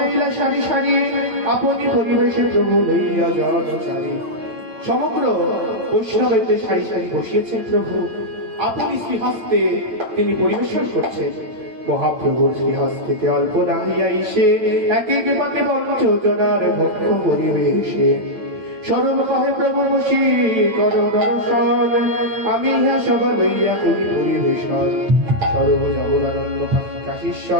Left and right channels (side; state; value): left; late; 8.9 ms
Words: সারি সারি, আপনি পরিবেশে প্রভু লইয়া জনচারী। সমগ্র বৈষ্ণবের সারি সারি বসিয়েছেন প্রভু, আপনি শ্রীহস্তে তিনি পরিবেশন করছেন। মহাপ্রভুর শ্রীহস্তে অল্প না হইয়া এসে এক এক পাতে পঞ্চজনার ভক্ষ পরিবেশে। সরল কহে প্রভু বসি কর দর্শন, আমি ইহা সব লইয়া করি পরিবেশন। সর্ব জগদানন্দ